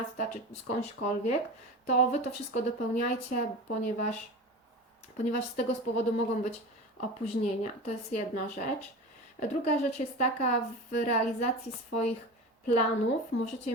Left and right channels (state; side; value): normal; both; correlation 0.30